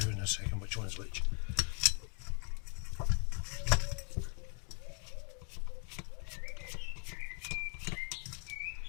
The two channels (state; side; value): quieter; right; 39.4 dB